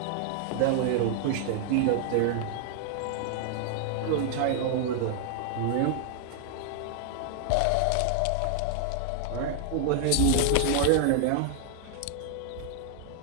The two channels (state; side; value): different; both; correlation 0.00